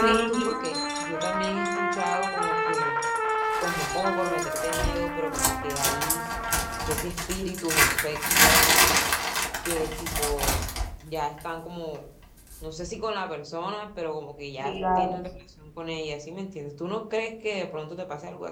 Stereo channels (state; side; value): identical; both; correlation 1.00